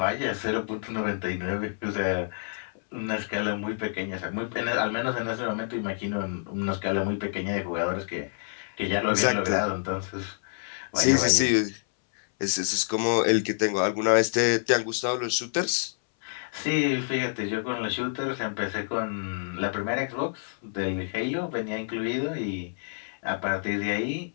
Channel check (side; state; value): right; silent; 59 dB below the other